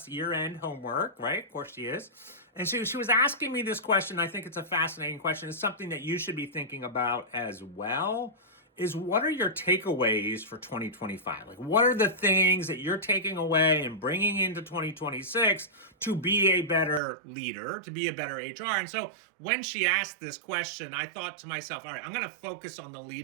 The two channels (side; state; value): left; drops out; at 17.0 s